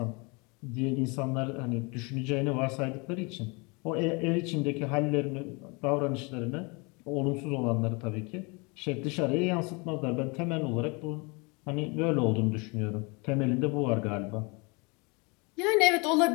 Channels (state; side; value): quieter; right; 29.5 dB